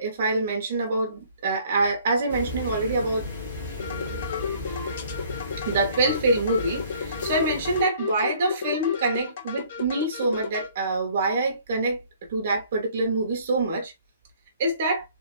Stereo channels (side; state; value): both; inverted; correlation -0.58